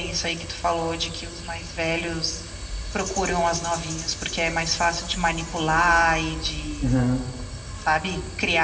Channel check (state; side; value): identical; both; correlation 1.00